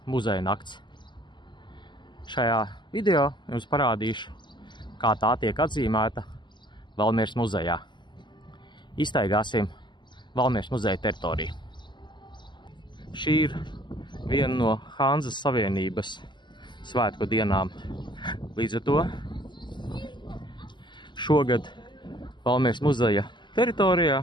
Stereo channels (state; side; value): late; right; 0.22 ms